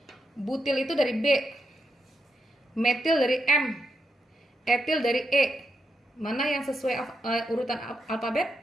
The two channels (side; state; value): both; normal; correlation 0.83